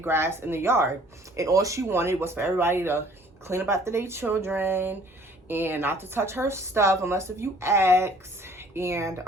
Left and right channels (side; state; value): both; normal; correlation 0.55